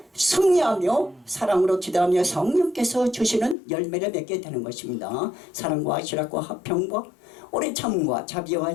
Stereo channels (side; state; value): right; drops out; at 3.6 s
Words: 승리하며 사랑으로 기도하며 성령께서 주시는 열매를 맺게 되는 것입니다. 사랑과 희락과 화평과 오래 참음과